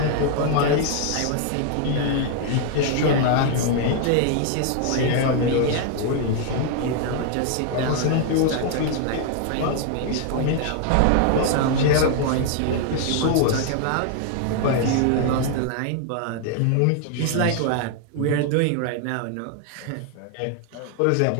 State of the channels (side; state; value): both; different; correlation 0.00